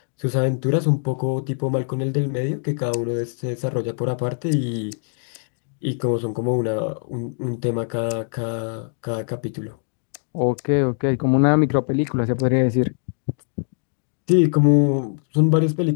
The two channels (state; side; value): silent; right; digital silence